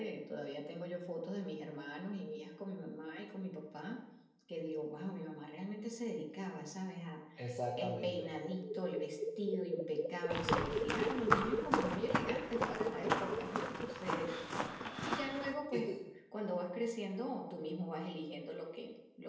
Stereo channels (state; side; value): identical; both; correlation 1.00